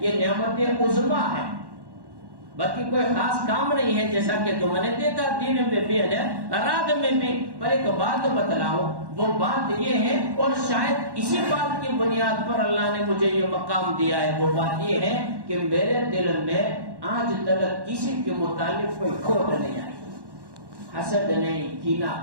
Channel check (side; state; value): left; late; 1.1 ms